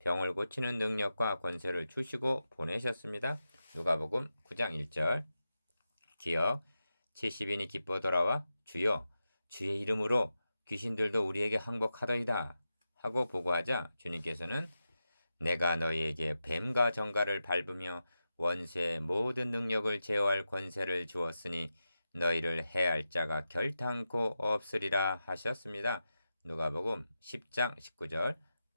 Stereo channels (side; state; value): both; inverted; correlation -0.90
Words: 고치는 능력과 권세를 주시고 보내셨습니다. 누가복음 9장 1절. 기억. 70인이 기뻐 돌아와 주여 주의 이름으로 귀신들도 우리에게 항복하더이다 하고 보고하자 주님께서는 내가 너희에게 뱀과 정갈을 밟으며 원수의 모든 능력을 제어할 권세를 주었으니 너희를 해할 자가 결탄코 없으리라 하셨습니다. 누가복음 10장 19절.